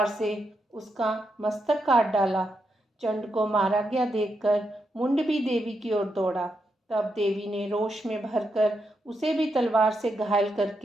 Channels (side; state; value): both; normal; correlation 0.83